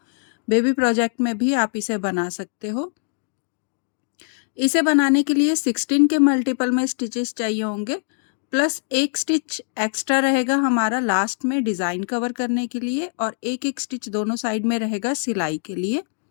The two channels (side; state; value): right; silent; digital silence